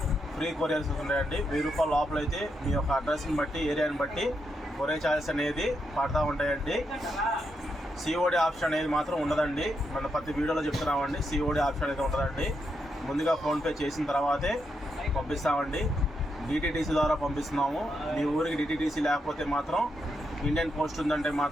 ఫ్రీ కొరియర్స్ ఉన్నాయండి. 1000 రూపాయల లోపల అయితే మీ యొక్క అడ్రస్ని బట్టి, ఏరియాని బట్టి కొరియర్ ఛార్జెస్ అనేది పడతా ఉంటాయండి. సిఓడి ఆప్షన్ అనేది మాత్రం ఉండదండి. మన ప్రతి వీడియోలో చెప్తున్నామండి, సిఓడి ఆప్షన్ అయితే ఉండదండి. ముందుగా ఫోన్పే చేసిన తర్వాతే పంపిస్తామండి. డిటిడిసి ద్వారా పంపిస్తున్నాము. మీ ఊరికి డిటిడిసి లేకపోతే మాత్రం ఇండియన్ పోస్ట్ ఉందంటే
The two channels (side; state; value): both; normal; correlation 0.82